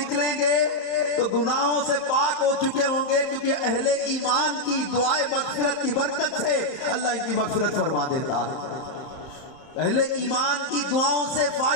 گے تو گناہوں سے پاک ہو چکے ہوں گے، کیونکہ اہل ایمان کی دعائے مغفرت کی برکت سے اللہ ان کی مغفرت فرما دیتا ہے. اہل ایمان کی دعاؤں سے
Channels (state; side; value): late; right; 31 ms